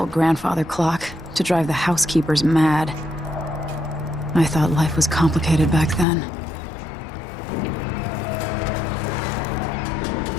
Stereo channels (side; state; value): right; drops out; at 6.1 s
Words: grandfather clock to drive the housekeepers mad. I thought life was complicated back then.